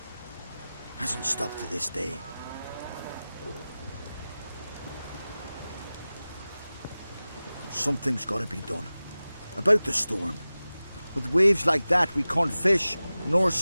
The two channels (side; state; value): both; inverted; correlation -0.96